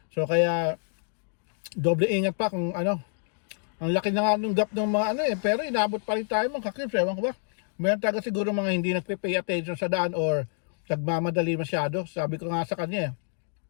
So kaya, doble ingat pa kung ang laki na nga nung gap ng mga pero inabot pa rin tayo mga cubes, ewan ko ba. Meron talaga siguro mga hindi nagpe-pay attention sa daan or nagmamadali masyado. Sabi ko nga sa kanya,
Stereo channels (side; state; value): right; silent; digital silence